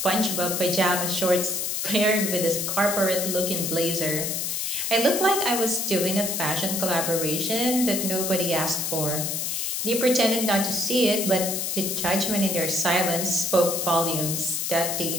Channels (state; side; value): noise; left; hiss, 1 dB below the sound